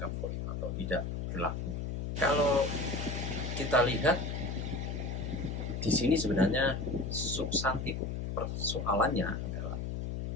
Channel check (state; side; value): noise; left; hum, 3 dB below the sound